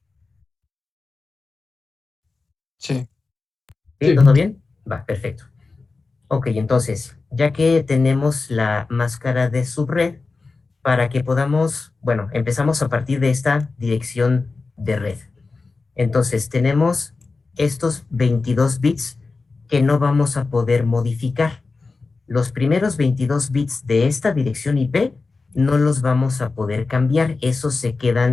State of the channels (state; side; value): quieter; right; 4.0 dB